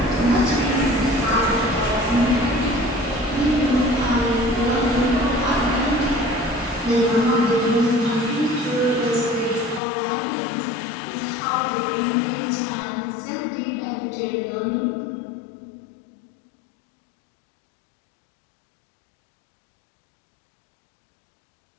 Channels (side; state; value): right; drops out; at 9.8 s